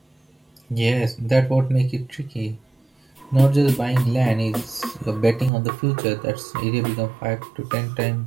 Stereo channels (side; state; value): left; drops out; at 5.5 s